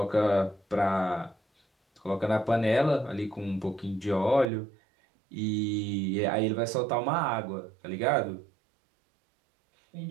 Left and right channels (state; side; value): drops out; left; at 4.5 s